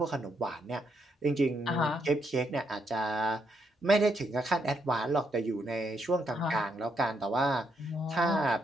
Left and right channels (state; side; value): normal; both; correlation 0.76